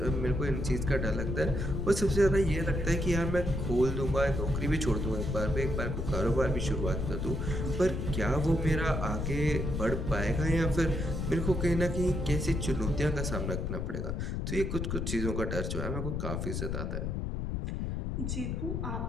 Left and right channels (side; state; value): left; noise; rumble, 2 dB below the sound